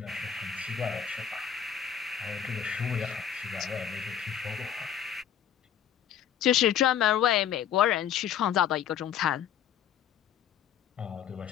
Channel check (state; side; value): quieter; right; 9.1 dB